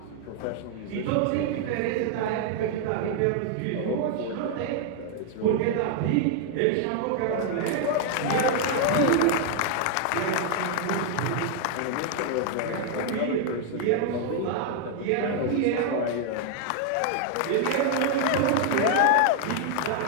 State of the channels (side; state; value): both; different; correlation 0.00